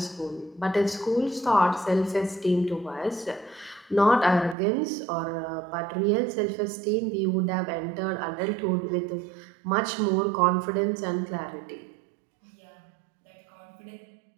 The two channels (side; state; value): left; drops out; at 4.5 s